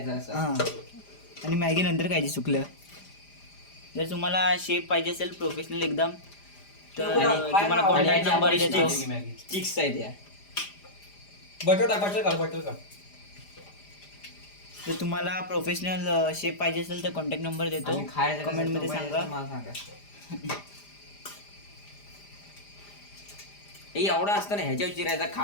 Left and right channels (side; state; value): right; late; 5.0 ms